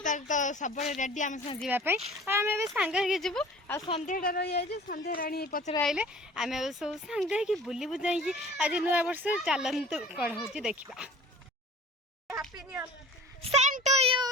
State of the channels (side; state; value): both; normal; correlation 0.43